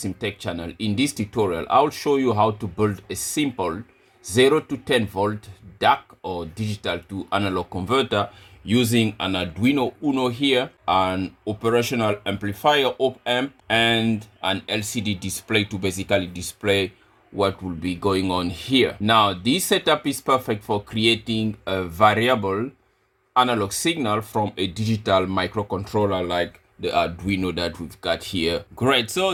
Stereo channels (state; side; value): identical; both; correlation 1.00